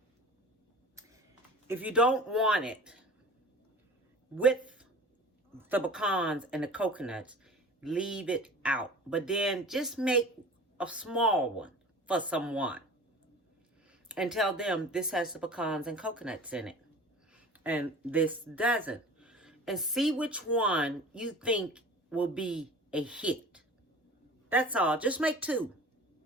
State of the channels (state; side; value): normal; both; correlation 0.40